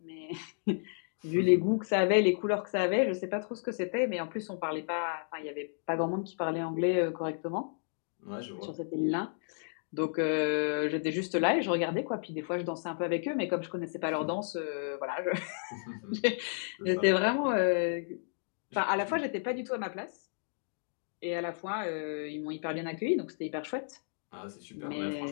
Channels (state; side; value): silent; right; digital silence